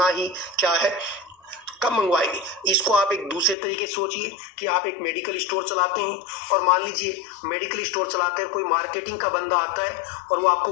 ही क्या है, कब मंगवाएंगे। इसको आप एक दूसरे तरीके से सोचिए कि आप एक मेडिकल स्टोर चलाते हैं और मान लीजिए मेडिकल स्टोर चलाते हैं, कोई मार्केटिंग का बंदा आता है और वो आपको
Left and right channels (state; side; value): drops out; right; at 3.6 s